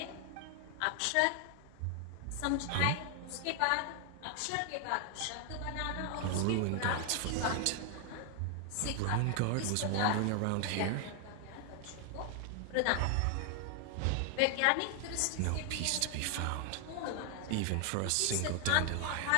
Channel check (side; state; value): both; different; correlation 0.00